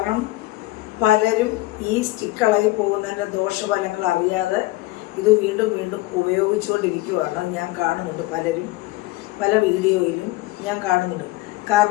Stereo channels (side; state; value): right; quieter; 19.2 dB